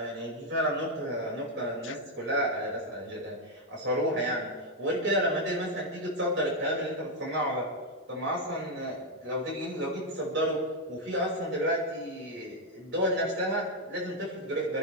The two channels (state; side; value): normal; both; correlation 0.02